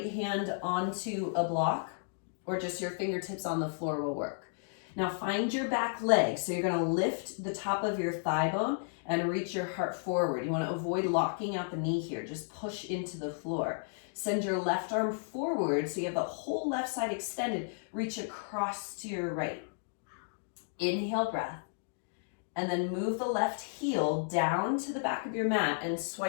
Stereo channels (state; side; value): silent; right; digital silence